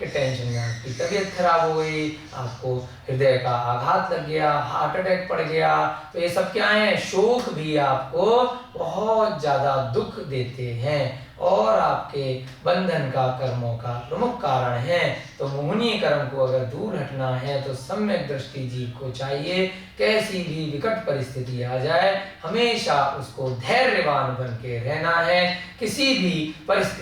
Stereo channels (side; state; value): both; identical; correlation 1.00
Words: टेंशन में आपकी तबीयत खराब हो गई, आपको हृदय का आघात लग गया, हार्ट अटैक पड़ गया। तो ये सब क्या है? शोक भी आपको बहुत ज्यादा दुख देते हैं और आपके बंधन का, कर्मों का प्रमुख कारण है। तो मोहनीय कर्म को अगर दूर हटना है तो सम्यक दृष्टि जीव को चाहिए, कैसी भी विकट परिस्थिति आ जाए हमेशा उसको धैर्यवान बन के रहना है, किसी भी